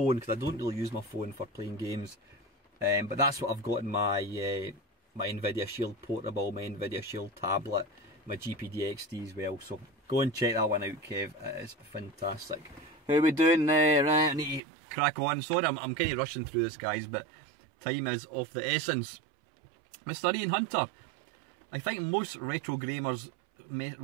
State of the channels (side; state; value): left; drops out; at 14.6 s